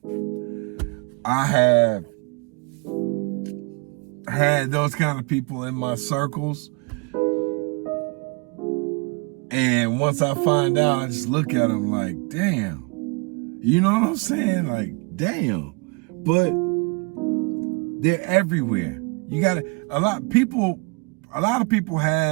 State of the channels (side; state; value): left; quieter; 31.1 dB